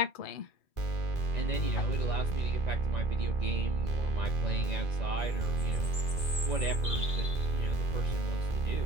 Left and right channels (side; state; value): right; late; 2.3 ms